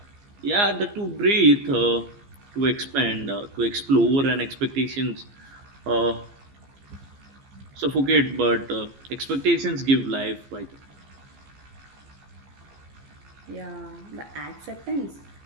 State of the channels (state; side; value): late; left; 15 ms